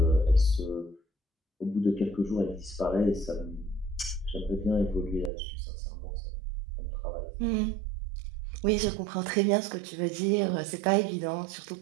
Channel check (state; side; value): drops out; left; at 5.3 s